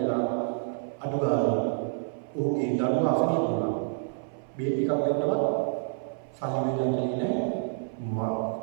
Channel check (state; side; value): silent; left; 56 dB below the other